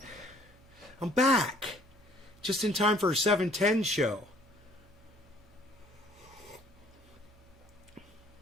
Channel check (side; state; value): both; normal; correlation 0.58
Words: I'm back. Just in time for a 7:10 show.